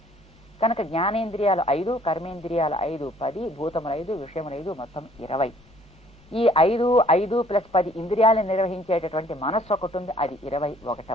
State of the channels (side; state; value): both; normal; correlation 0.59